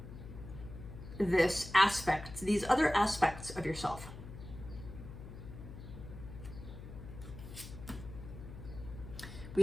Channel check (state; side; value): noise; left; hum, 12 dB below the sound